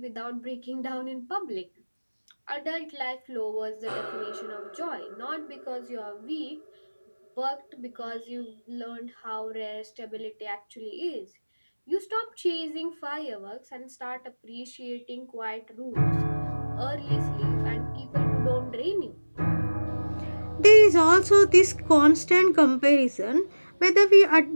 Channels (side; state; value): both; inverted; correlation -1.00